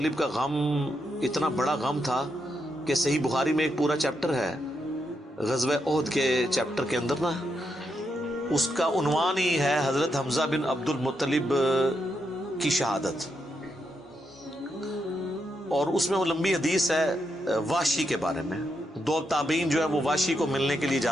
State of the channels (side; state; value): both; normal; correlation 0.82